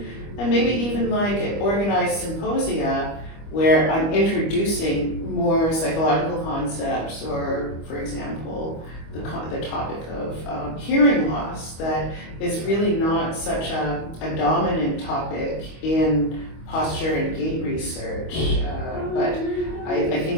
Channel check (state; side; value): late; right; 25 ms